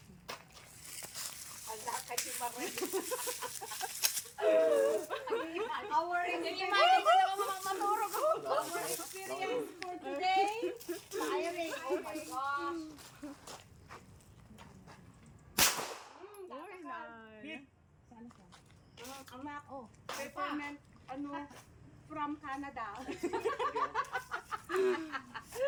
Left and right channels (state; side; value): identical; both; correlation 1.00